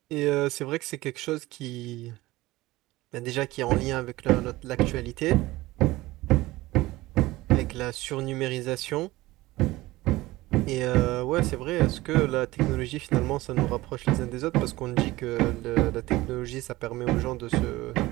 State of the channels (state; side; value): quieter; left; 18.8 dB